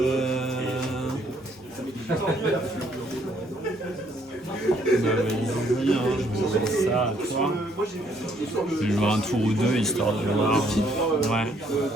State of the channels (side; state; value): both; normal; correlation 0.67